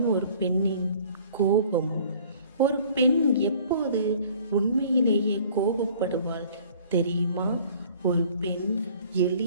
ஒரு பெண்ணின் கோபம். ஒரு பெண் எப்போது உண்மையிலேயே கோபப்படுவாள் தெரியுமா? ஒரு பெண்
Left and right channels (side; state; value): both; inverted; correlation -0.53